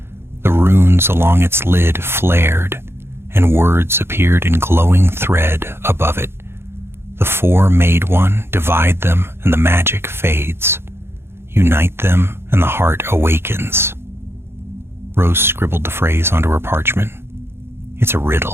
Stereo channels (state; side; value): late; left; 0.12 ms